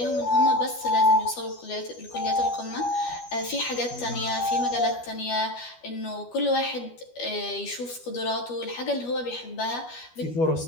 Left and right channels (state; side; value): late; right; 12 ms